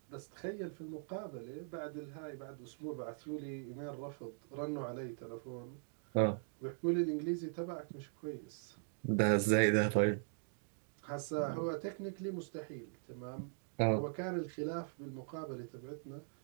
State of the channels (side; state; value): left; silent; digital silence